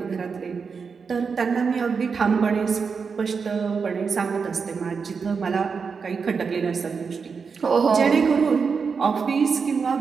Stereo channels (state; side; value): quieter; left; 5.5 dB